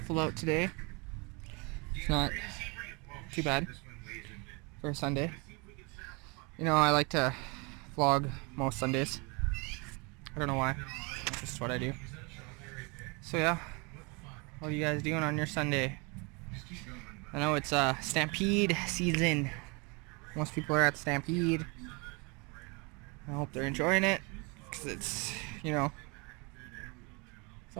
out today. It's not too bad for a Sunday. You know, I like to vlog most Sundays. I don't know why. That's just what I do. So yeah, what are you guys doing on your Sunday? I know it's Stampede season. Most people are at Stampede. I hope they're enjoying it, because it's, you know,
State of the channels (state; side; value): quieter; left; 30.0 dB